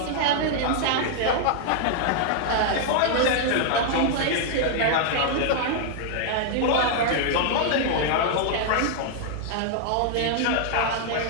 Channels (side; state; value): both; different; correlation -0.01